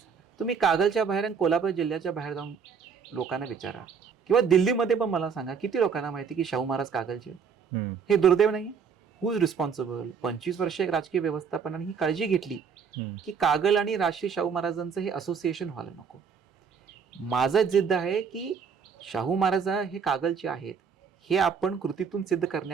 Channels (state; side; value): quieter; left; 6.3 dB